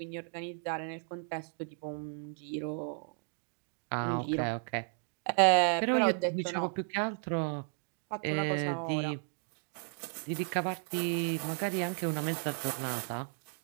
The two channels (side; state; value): left; silent; 55 dB below the other